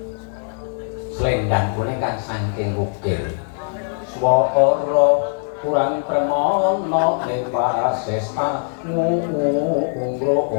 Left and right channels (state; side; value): silent; right; 65 dB below the other